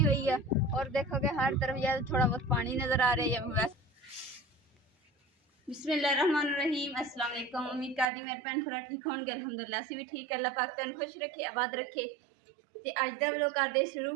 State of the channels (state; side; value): drops out; left; at 8.1 s